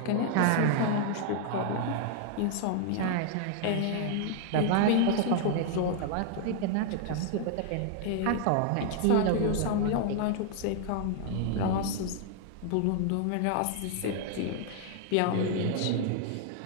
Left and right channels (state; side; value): different; both; correlation 0.00